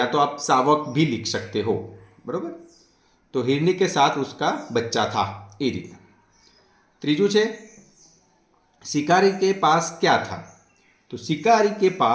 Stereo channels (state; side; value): identical; both; correlation 1.00